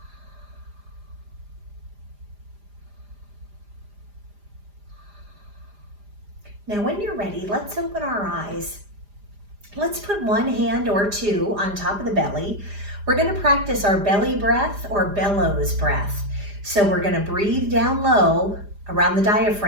Now, when you're ready, let's open our eyes. Let's put one hand or two on top of the belly. We're going to practice our belly breath or bellows breath. So we're going to breathe down low around the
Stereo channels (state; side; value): late; left; 4.9 ms